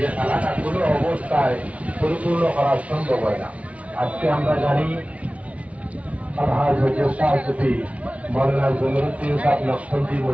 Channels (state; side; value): late; left; 0.065 ms